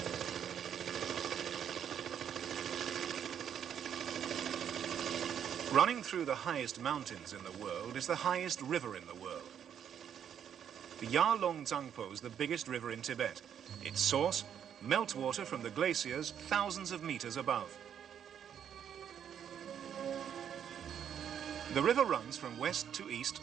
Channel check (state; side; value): quieter; left; 8.8 dB